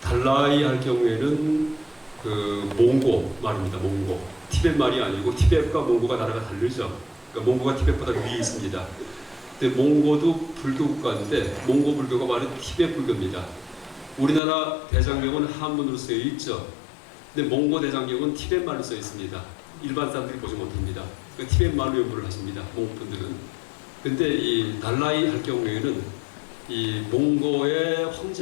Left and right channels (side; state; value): right; drops out; at 14.4 s